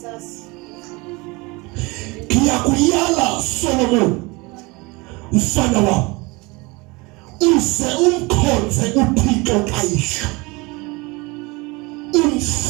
Kuyakuyala Solomon mfana wami uze umkhonze uThixo kayihlo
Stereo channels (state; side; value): quieter; left; 25.2 dB